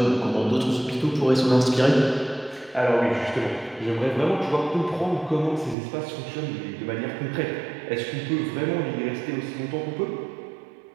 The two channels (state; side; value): drops out; left; at 5.8 s